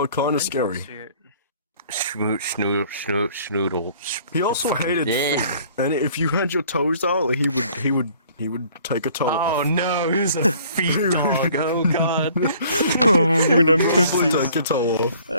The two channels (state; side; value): inverted; both; correlation -0.56